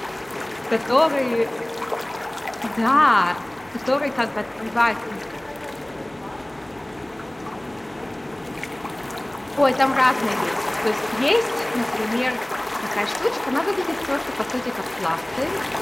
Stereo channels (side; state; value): right; noise; hum, 29 dB below the sound